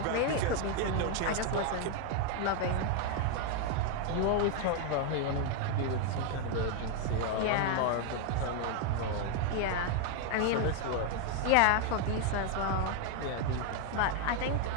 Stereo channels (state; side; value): different; both; correlation 0.01